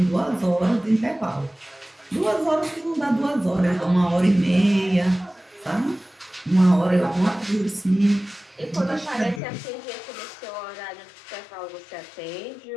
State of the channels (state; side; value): drops out; right; at 9.4 s